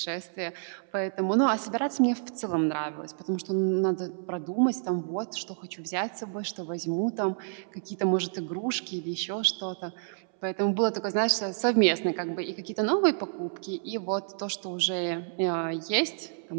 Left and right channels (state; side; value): silent; left; 58 dB below the other